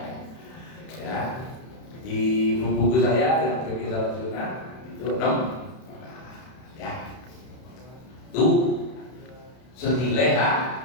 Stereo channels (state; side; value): late; right; 31 ms